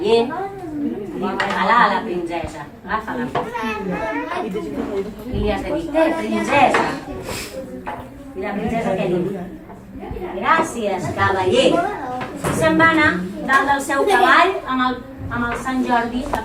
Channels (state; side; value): identical; both; correlation 1.00